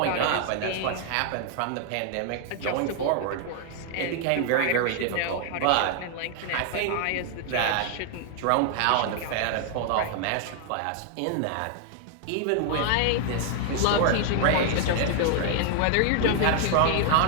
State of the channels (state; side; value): different; both; correlation 0.00